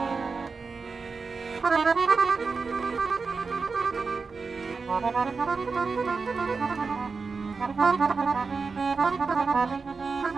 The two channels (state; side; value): quieter; left; 4.7 dB